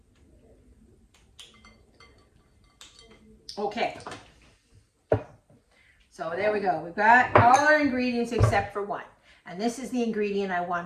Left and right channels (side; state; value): both; identical; correlation 1.00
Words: Okay. So there we go. We've got all our ingredients except for 1. And this is the ingredient I